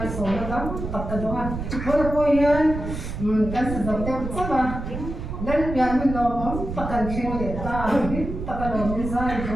số nó lắm tập cái đó thôi thôi yên cái sự đầu tiên chắc là đến bây mình nó muốn tập cái chuyện để ta tập cái đó mình giải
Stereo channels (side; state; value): right; noise; rumble, 6 dB below the sound